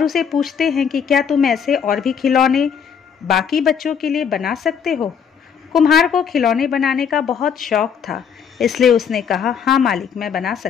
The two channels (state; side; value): quieter; right; 7.3 dB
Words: उसे पूछते हैं कि क्या तुम ऐसे और भी खिलौने बाकी बच्चों के लिए बना सकते हो। कुम्हार को खिलौने बनाने का बहुत शौक था, इसलिए उसने कहा, हाँ मालिक, मैं बना